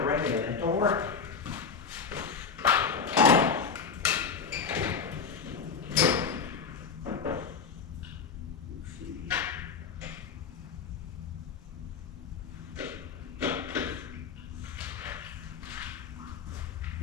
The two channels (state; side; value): quieter; right; 5.8 dB